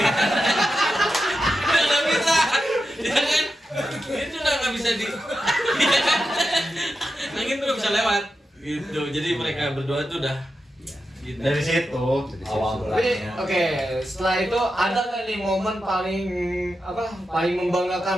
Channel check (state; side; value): normal; both; correlation 0.89